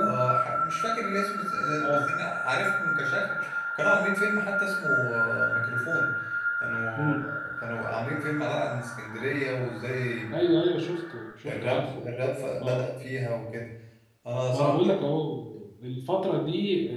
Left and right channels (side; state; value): both; identical; correlation 1.00